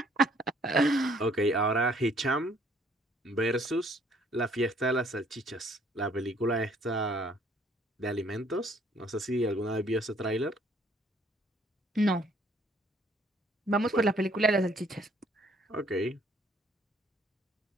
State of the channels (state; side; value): normal; both; correlation 0.62